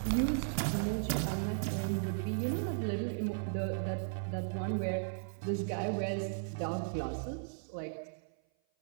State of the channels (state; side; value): silent; left; 54 dB below the other